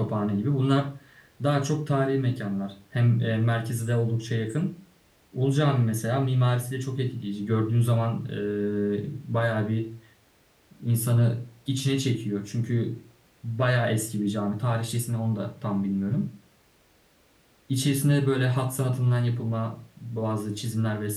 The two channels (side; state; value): both; identical; correlation 1.00